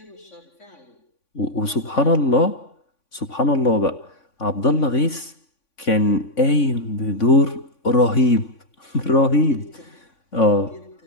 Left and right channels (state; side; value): late; right; 3.5 ms